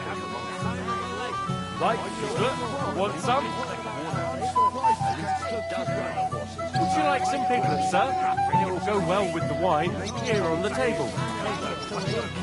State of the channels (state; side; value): identical; both; correlation 1.00